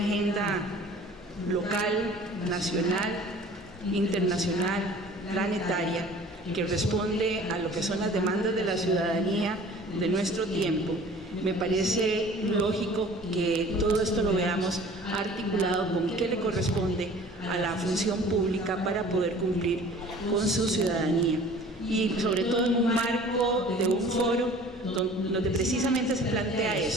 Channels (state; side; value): normal; both; correlation 0.47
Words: local, nacional, internacional, planetaria, que responde a lo que son las demandas de la ciudadanía de nuestro tiempo, me parece lógico que todo esto lo veamos articulado con qué le corresponde a la función pública para poder cumplir con su ciudadanía, y sobre todo en un marco de un foro donde precisamente se plantea